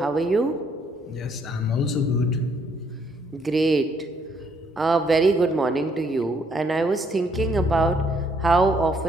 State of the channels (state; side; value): normal; both; correlation 0.68